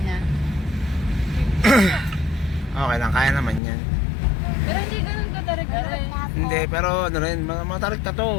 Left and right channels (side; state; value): right; drops out; at 3.6 s